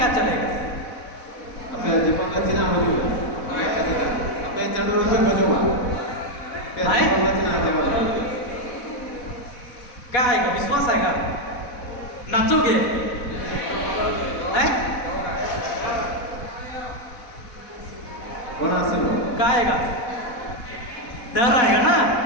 चलेगा? अपने जीवन का चिन्ह हो जो अपने चंडोर में खोजो आए क्या क्या आएगा? विश्वास आएगा? नाचोगे? हैं? कौन आसे क्या आएगा? डर आएगा ना?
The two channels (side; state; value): right; late; 4.1 ms